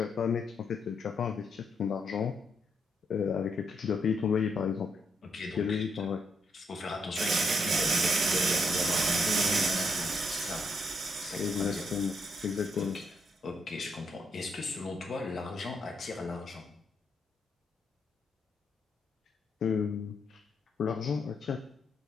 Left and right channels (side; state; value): both; normal; correlation 0.77